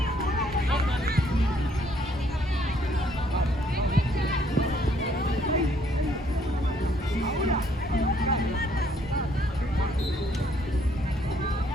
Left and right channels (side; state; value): both; normal; correlation 0.66